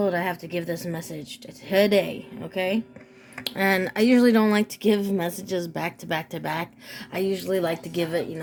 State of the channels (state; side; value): identical; both; correlation 1.00